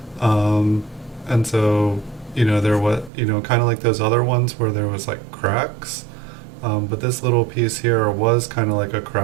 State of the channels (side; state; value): left; drops out; at 3.1 s